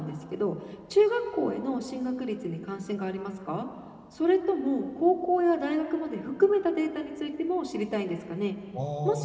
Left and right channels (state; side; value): identical; both; correlation 1.00